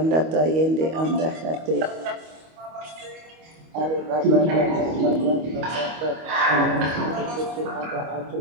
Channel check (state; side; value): late; left; 25 ms